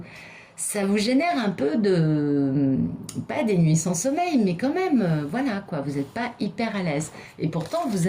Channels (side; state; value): both; identical; correlation 1.00